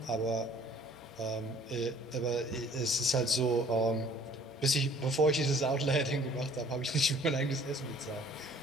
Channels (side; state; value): both; normal; correlation 0.55